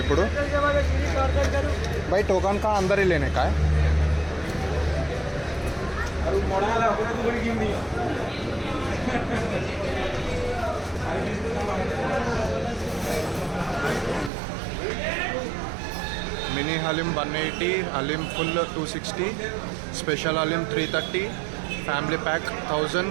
ఇప్పుడు. బై టోకన్ కా అందరి లేనే का mini haleem 180, haleem full 260, special haleem 330, family pack 1000,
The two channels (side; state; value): left; drops out; at 14.3 s